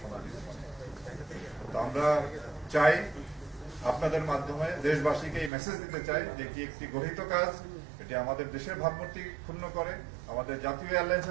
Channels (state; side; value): drops out; left; at 5.5 s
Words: সমাধি হয়। তো আমরা চাই আপনাদের মাধ্যমে দেশবাসীকে এই মেসেজ দিতে চাই যে এটি একটি গঠিত কাজ, এটি আমাদের দেশের ভাবমূর্তি ক্ষুণ্ণ করে, আমাদের জাতীয়